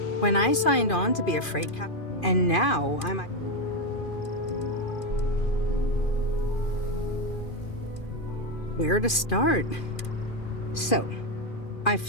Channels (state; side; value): late; right; 2.4 ms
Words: When I signed on to be a freight cap, and now I'm... Where to start? So, I